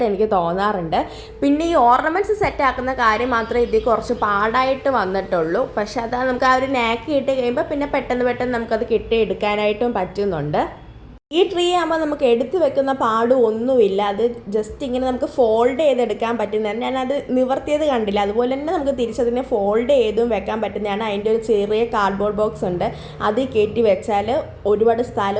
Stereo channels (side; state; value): both; identical; correlation 1.00